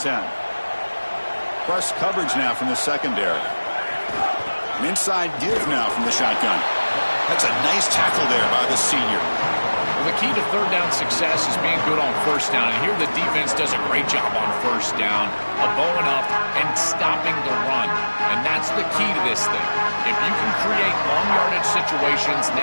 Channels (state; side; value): inverted; both; correlation -1.00